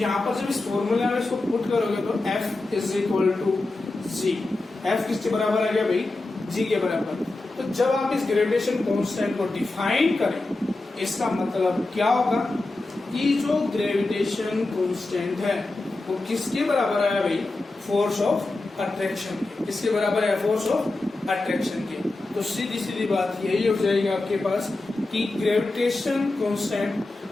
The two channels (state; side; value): quieter; right; 3.0 dB